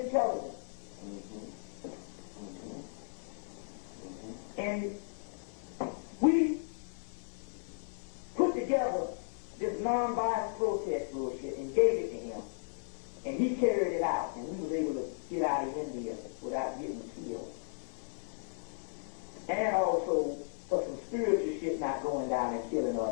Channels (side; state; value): right; silent; 54 dB below the other